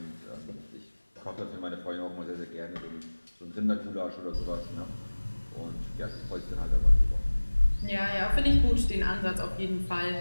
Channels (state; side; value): inverted; both; correlation -1.00